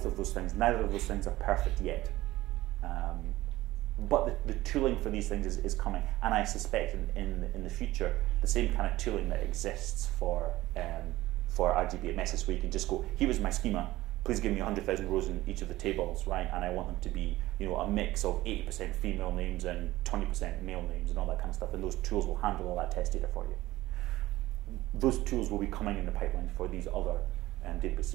of those things. Neither of those things are perfect yet. But the tooling for these things is coming, and I suspect in the future the same kind of tooling that exists for RDBMS, where you can just go, here is my schema, please give me 100,000 rows in each of the tables, right? And I want them to be, you know, a mix of 80% female names and 20% male names and all that kind of stuff, and those tools will handle all that test data for you. Those tools will be coming in the pipeline for these other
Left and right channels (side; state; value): left; quieter; 17.1 dB